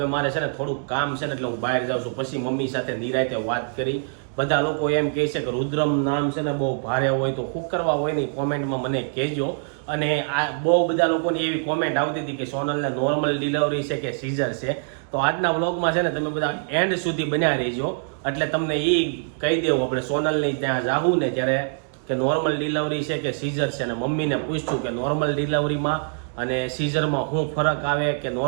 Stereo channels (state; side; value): silent; left; digital silence